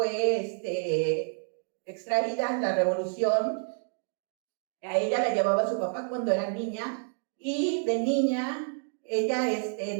extraída en la Revolución. A ella la llevaba su papá cuando era niña, y de niña ella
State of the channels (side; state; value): left; silent; 58 dB below the other